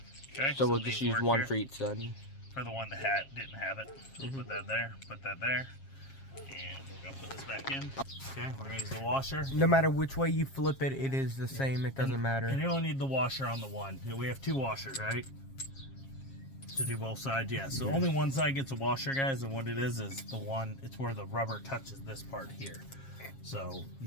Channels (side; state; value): right; late; 7.4 ms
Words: Okay, So we'll just these use work one here. for each side. For the one that didn't have it. Put that there, put that there. And we're going to put this back in. Okay, we're going to use the washer. No matter which way you flip it, it is the same. It doesn't matter. And you only need the washer on the one. We have two washers, right? To do both sides, yeah. So only one side gets a washer, guys, and what it is the one, it's where the rubber touches this part here. So you